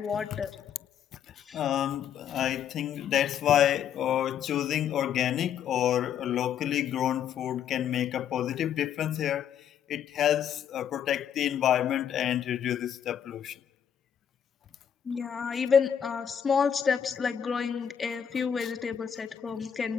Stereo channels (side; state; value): right; quieter; 8.8 dB